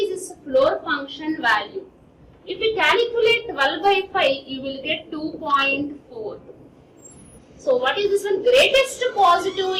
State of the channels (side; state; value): both; identical; correlation 1.00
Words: this floor function value? If we calculate 12 by 5, you will get 2.4. So, what is this one? Greatest positive